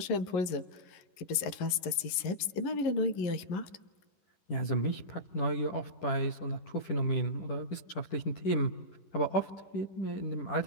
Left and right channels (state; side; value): late; right; 11 ms